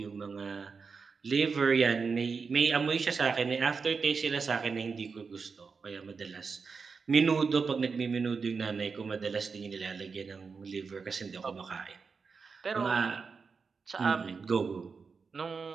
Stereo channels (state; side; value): quieter; left; 5.1 dB